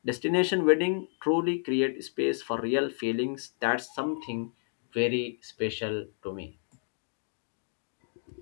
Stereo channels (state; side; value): silent; right; digital silence